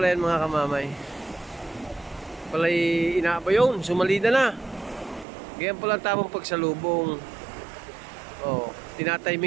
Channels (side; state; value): left; drops out; at 5.2 s